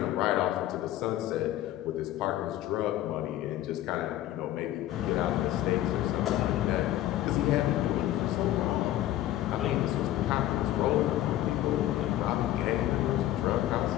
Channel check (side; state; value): right; quieter; 13.8 dB